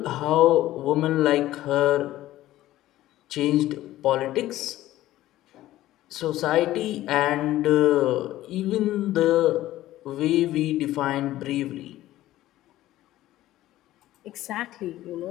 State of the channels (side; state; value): right; quieter; 15.0 dB